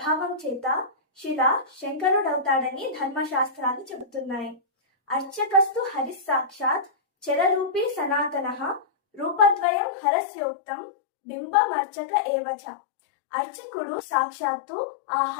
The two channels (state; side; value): drops out; right; at 9.7 s